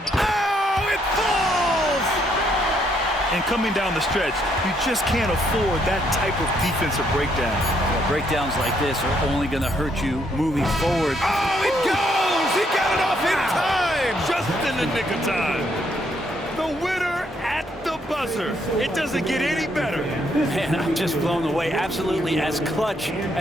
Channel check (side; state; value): both; normal; correlation 0.72